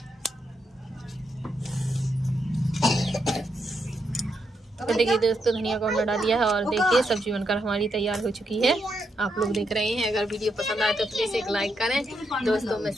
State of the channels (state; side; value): normal; both; correlation 0.81